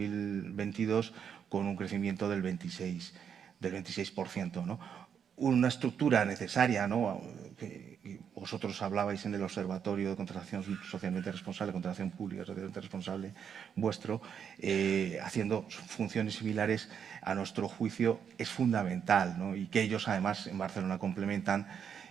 con un crecimiento del 26%, ¿no? Una estructura necesaria, ¿no? Que vosotros hablabais en el Observatorio de Contratación Socialmente Responsable, Contratación Pública Socialmente Responsable vuestro, haciendo funciones similares, a nuestro juicio es fundamental, ¿no? Y que ellos además en Barcelona complementan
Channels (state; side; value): quieter; left; 7.7 dB